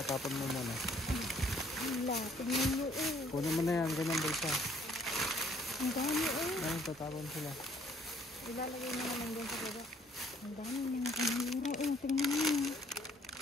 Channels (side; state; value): both; normal; correlation 0.63